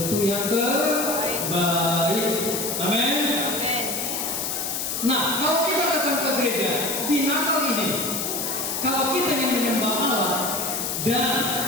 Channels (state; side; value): noise; left; hiss, 2 dB below the sound